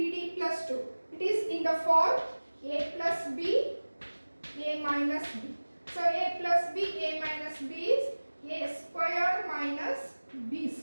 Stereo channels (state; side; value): inverted; both; correlation -1.00